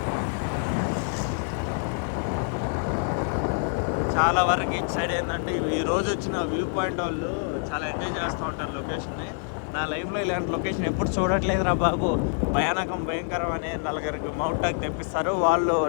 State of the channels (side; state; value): right; silent; 61 dB below the other